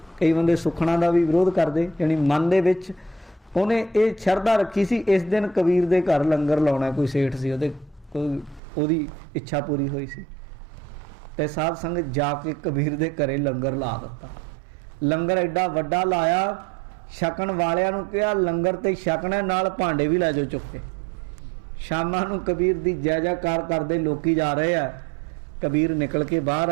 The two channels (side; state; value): left; drops out; at 8.6 s